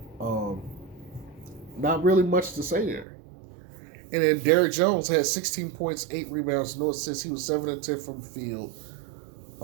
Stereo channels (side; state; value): left; drops out; at 3.1 s